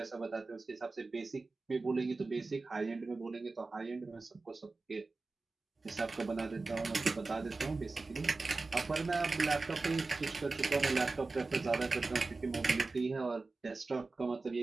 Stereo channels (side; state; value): left; quieter; 3.7 dB